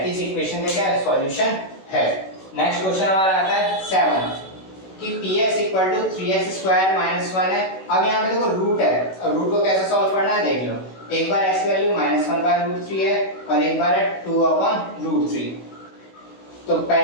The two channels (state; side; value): late; right; 16 ms